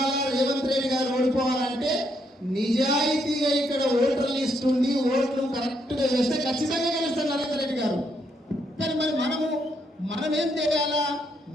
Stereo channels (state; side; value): normal; both; correlation 0.75